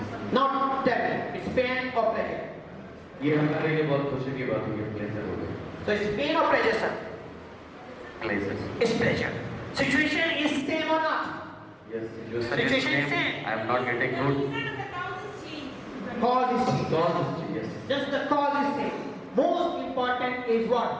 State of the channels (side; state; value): both; identical; correlation 1.00